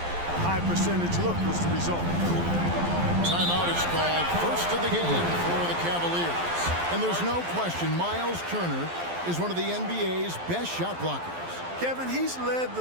high percentage look was the result. Timeout is called. First of the game for the Cavaliers. And there's no question Miles Turner is one of the NBA's best shot blockers. Kevin, he's led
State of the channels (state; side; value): late; left; 12 ms